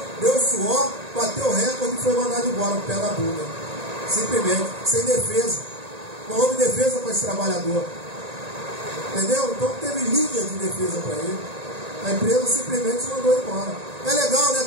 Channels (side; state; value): left; late; 1.8 ms